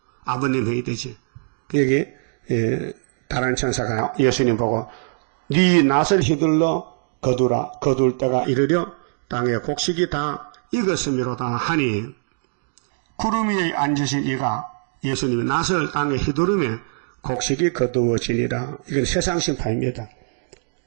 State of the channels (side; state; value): left; silent; digital silence